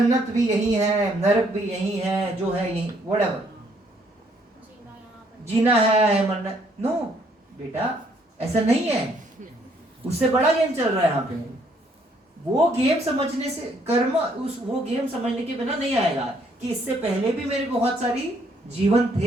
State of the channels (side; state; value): both; normal; correlation 0.67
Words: भी यही है, नरक भी यही है, जो है यही, whatever. जीना है, मरना. नो बेटा, ऐसा नहीं है. उससे बड़ा गेम चल रहा है यहाँ पे. वो गेम समझने से कर्म, वो गेम समझने के बिना नहीं आएगा कि इससे पहले भी मेरे बहुत सारी जीवन